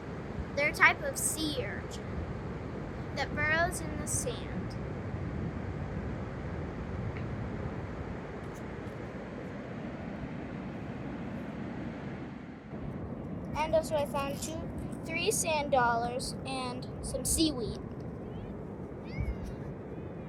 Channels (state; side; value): identical; both; correlation 1.00